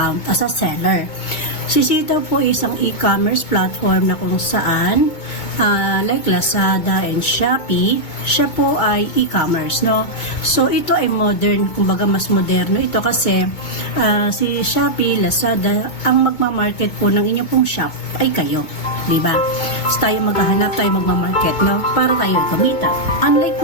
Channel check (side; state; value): right; late; 2.2 ms